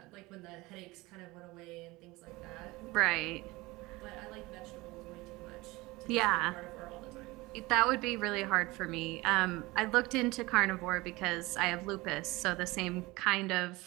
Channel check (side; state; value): left; quieter; 21.5 dB